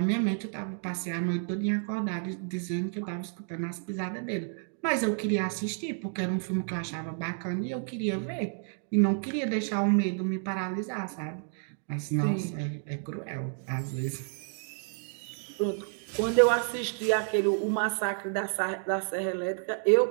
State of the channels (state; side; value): silent; left; 58 dB below the other